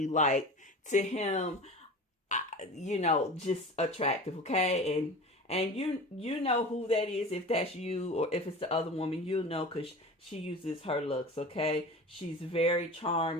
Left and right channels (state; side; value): normal; both; correlation 0.35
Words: like, to him, just attractive. Okay, and you know who that is. If that's you, or if it's the other woman, you'll know, because she uses her looks. Okay, she's very